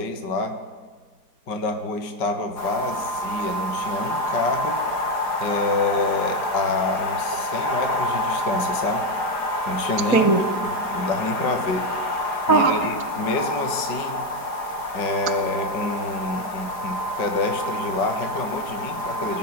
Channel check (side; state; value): right; late; 4.9 ms